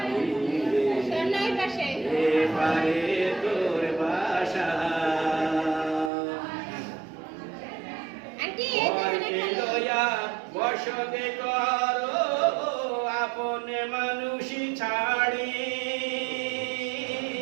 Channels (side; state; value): left; drops out; at 6.1 s